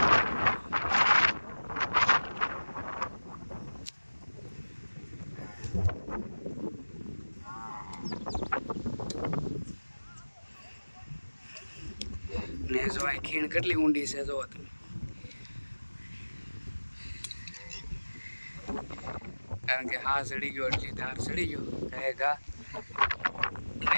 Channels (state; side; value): inverted; both; correlation -1.00